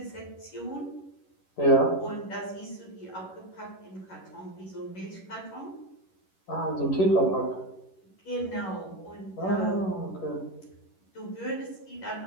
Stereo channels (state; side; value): late; right; 11 ms